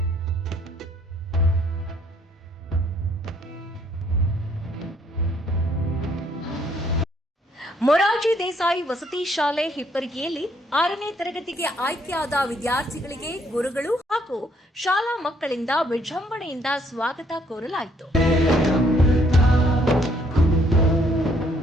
ಮೊರಾರ್ಜಿ ದೇಸಾಯಿ ವಸತಿ ಶಾಲೆ ಹಿಪ್ಪರಿಗೆಯಲ್ಲಿ 6ನೇ ತರಗತಿಗೆ ಆಯ್ಕೆಯಾದ ವಿದ್ಯಾರ್ಥಿಗಳಿಗೆ ಗುರುಗಳು ಹಾಗೂ ಶಾಲಾ ಮಕ್ಕಳಿಂದ ವಿಜೃಂಭಣೆಯಿಂದ ಸ್ವಾಗತ ಕೋರಲಾಯಿತು.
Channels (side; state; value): both; normal; correlation 0.67